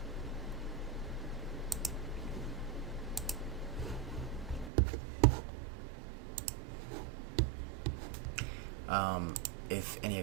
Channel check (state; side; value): drops out; left; at 4.7 s